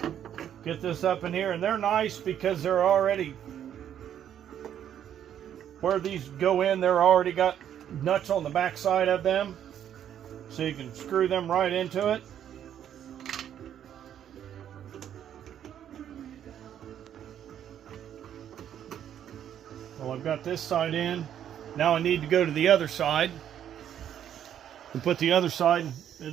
get this up in here, and they're nice because they're already, where these go in, they're already got nuts on the back side of them, so you can screw them right into it. Well, I've got this side in. Now I need to go to the other side and put the other side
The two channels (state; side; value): quieter; left; 9.9 dB